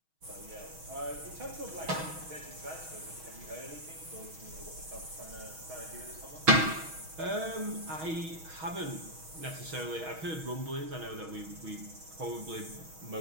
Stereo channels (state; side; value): late; left; 6.3 ms